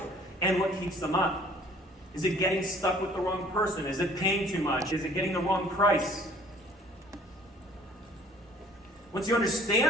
And what keeps them up? Is it getting stuck with the wrong person? Is it paying too much? Is it getting the wrong price? Once you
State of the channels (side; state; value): both; normal; correlation 0.54